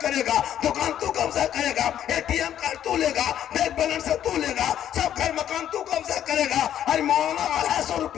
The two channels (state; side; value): quieter; right; 10.6 dB